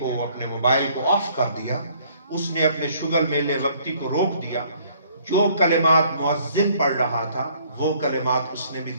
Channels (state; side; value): inverted; both; correlation -0.61